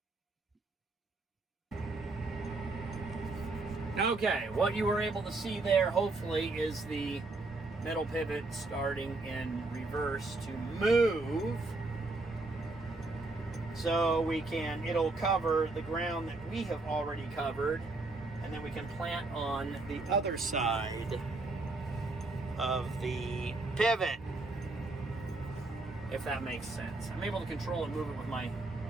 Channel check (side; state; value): left; quieter; 3.2 dB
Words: Okay, what you were able to see there, hopefully, is the middle pivot starting in reverse to move. So it'll cover the ground that we have already covered, and then we can plant on the other side of the pivot, if that makes sense. I'm able to control and move it with my